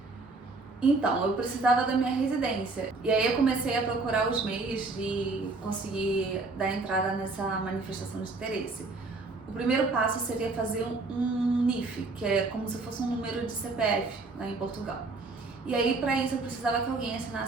Então, eu precisava da minha residência. E aí eu comecei a procurar os meios de conseguir dar entrada nessa manifestação de interesse. O primeiro passo seria fazer um NIF, que é como se fosse um número de CPF lá em Portugal. E aí, para isso, eu precisava que alguém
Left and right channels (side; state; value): left; quieter; 3.6 dB